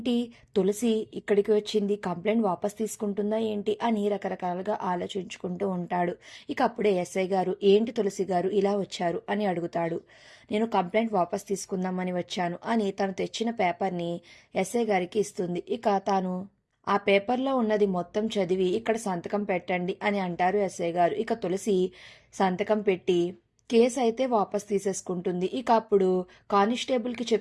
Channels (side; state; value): both; identical; correlation 1.00